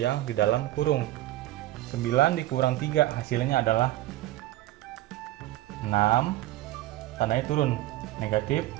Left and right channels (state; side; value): quieter; left; 15.6 dB